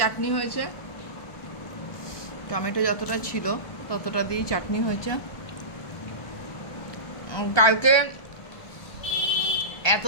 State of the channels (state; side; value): late; right; 1.2 ms